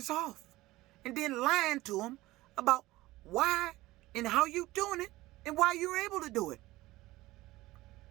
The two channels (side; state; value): left; quieter; 18.3 dB